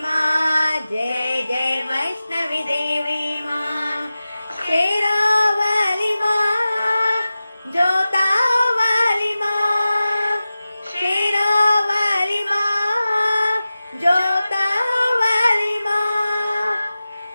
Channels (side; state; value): both; inverted; correlation -0.95